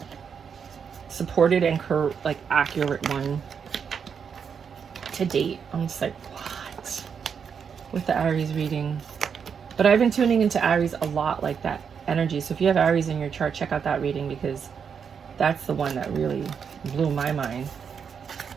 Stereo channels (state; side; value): quieter; left; 6.8 dB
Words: supported and accurate one to date. I'm just like, what? With the Aries reading. But I've been tuning into Aries a lot, like that energy. So if you have Aries in your chart, check out that reading, because that's the one that really blew my mind.